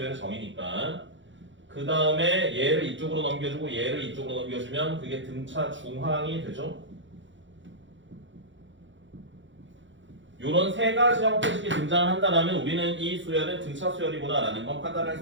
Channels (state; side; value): late; left; 0.54 ms